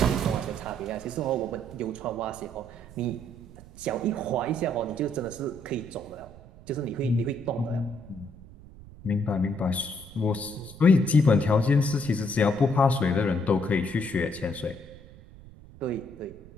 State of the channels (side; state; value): right; noise; rumble, 19 dB below the sound